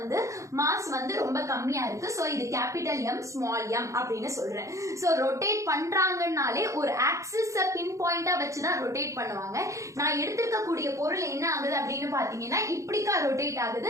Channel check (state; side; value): late; left; 0.15 ms